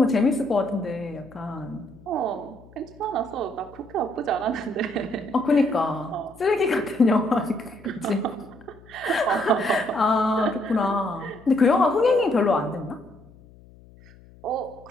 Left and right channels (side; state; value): left; noise; hum, 24 dB below the sound